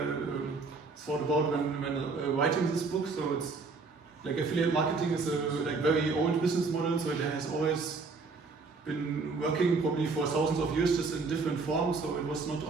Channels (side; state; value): left; quieter; 4.2 dB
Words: thought about when writing this book. So it's like affiliate marketing is a like very old business model, so it has always been working probably for thousands of years, just in different forms. So it was not